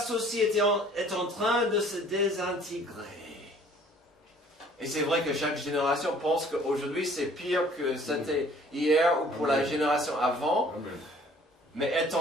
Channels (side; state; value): both; normal; correlation 0.55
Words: est en train de se désintégrer. Et c'est vrai que chaque génération pense qu'aujourd'hui c'est pire que c'était hier ou pour la génération avant. Mais